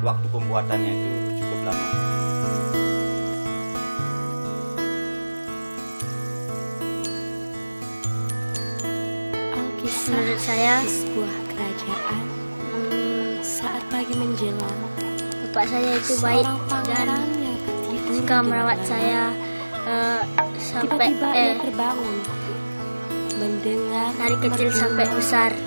waktu pembuatannya itu cukup lama. Menurut saya, sebuah kerajaan saat pagi menjelang, bapak saya itu baik dan suka merawat saya sampai tiba-tiba ia terbangun mendengar dari kecil sampai besar,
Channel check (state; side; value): inverted; both; correlation -1.00